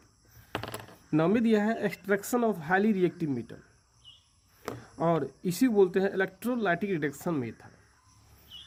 नामित यह है extraction of highly reactive metal और इसी बोलते हैं इलेक्ट्रोलाइटिक रिडक्शन मेथड।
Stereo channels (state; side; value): identical; both; correlation 1.00